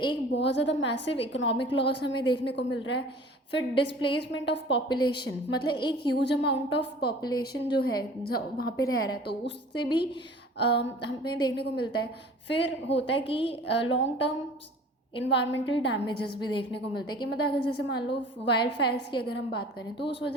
बहुत ज़्यादा मैसिव इकोनॉमिक लॉस हमें देखने को मिल रहा है। फिर डिस्प्लेसमेंट ऑफ पॉपुलेशन, मतलब एक ह्यूज अमाउंट ऑफ पॉपुलेशन जो है वहाँ पे रह रहा है, तो उससे भी हमें देखने को मिलता है। फिर होता है कि लॉन्ग टर्म इन्वायरमेंटल डैमेजेस भी देखने को मिलते हैं कि मतलब अगर जैसे मान लो वाइल्ड फायर्स की अगर हम बात करें तो उस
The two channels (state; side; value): normal; both; correlation 0.46